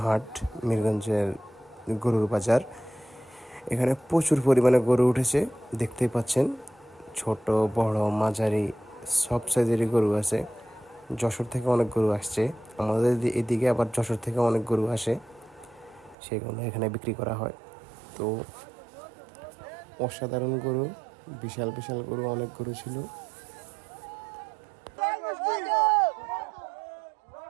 হাট, মিরগঞ্জের গরুর বাজার। এখানে প্রচুর পরিমাণে গরু উঠেছে, দেখতেই পাচ্ছেন। ছোট বড় মাঝারি সব সাইজেরই গরু আছে। যশোর থেকে অনেক গরু আসছে, আমাদের এদিকে আবার যশোর থেকে অনেক গরু আসে, সেগুলো এখানে বিক্রি করা হয়। তো অসাধারণ গরু, বিশাল বিশাল গরু, অনেক গরু ছিল।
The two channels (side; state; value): left; drops out; at 16.2 s